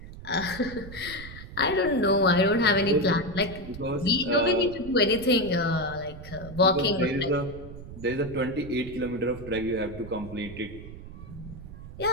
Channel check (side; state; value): right; noise; rumble, 13 dB below the sound